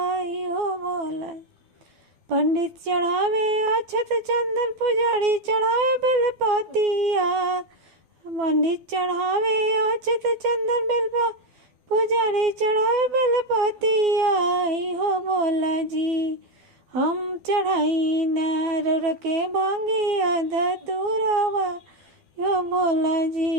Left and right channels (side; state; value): left; late; 12 ms